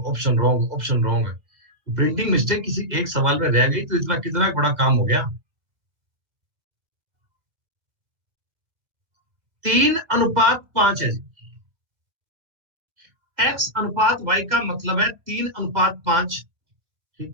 option wrong, option wrong. Printing mistake किसी एक सवाल में रह गई तो इतना कितना बड़ा काम हो गया। 3/5 है जी। x/y का मतलब है 3/5।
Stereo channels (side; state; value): left; late; 2.0 ms